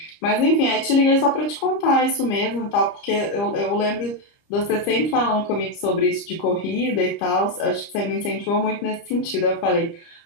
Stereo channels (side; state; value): right; late; 30 ms